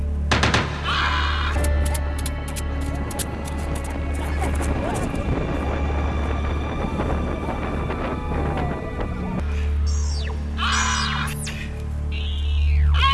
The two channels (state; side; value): identical; both; correlation 1.00